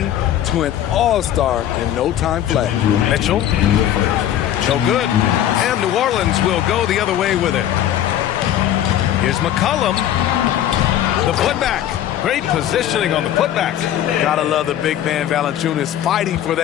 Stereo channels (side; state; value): right; quieter; 11.3 dB